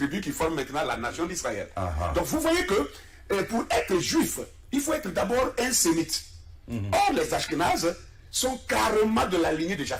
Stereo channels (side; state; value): both; identical; correlation 1.00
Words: qui forment maintenant la nation d'Israël. Donc vous voyez que pour être juif, il faut être d'abord un sémite. Or les Ashkénazes, sont carrément de la lignée de